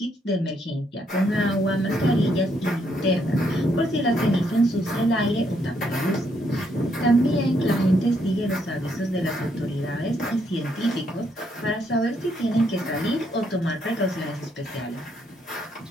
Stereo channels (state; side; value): normal; both; correlation 0.74